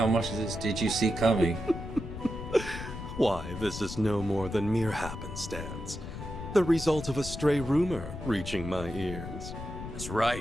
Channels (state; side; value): noise; left; rumble, 9 dB below the sound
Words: much of this did you see coming? Why, this is no more than mere happenstance. The result of a stray rumor reaching my ears. That's